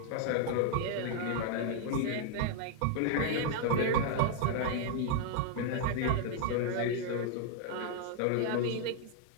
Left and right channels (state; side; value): different; both; correlation 0.00